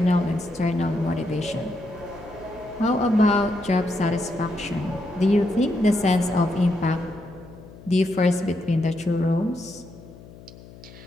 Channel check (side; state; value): left; noise; hum, 19 dB below the sound